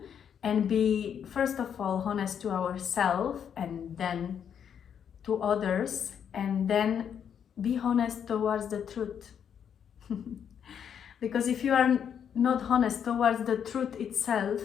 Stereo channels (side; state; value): right; quieter; 8.2 dB